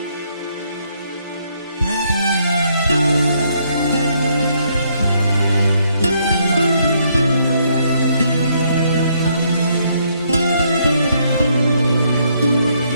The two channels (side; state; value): both; inverted; correlation -0.72